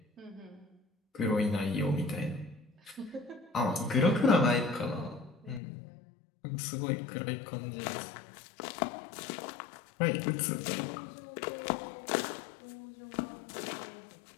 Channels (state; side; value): drops out; right; at 5.6 s